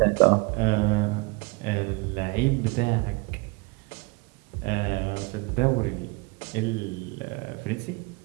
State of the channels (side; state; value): left; quieter; 26.4 dB